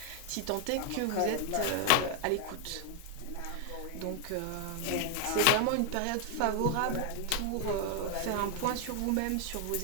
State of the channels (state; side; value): different; both; correlation 0.00